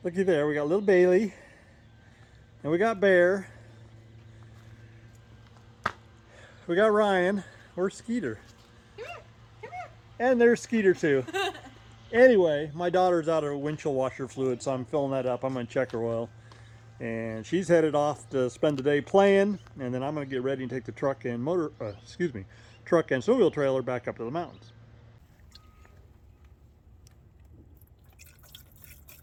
Looky there, we got little Bailey, and we got Bear. We got Ryan. Where's Skeeter? Come here, come here. And there's Skeeter too. Anyway, my daughter's out of windshield washer fluid, so I'm filling that up. I'm gonna check her oil. And she's headed off to spend the day playing, and then I'm gonna get ready and take the truck and truck and snowmobile trailer back up to the mountains.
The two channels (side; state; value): both; identical; correlation 1.00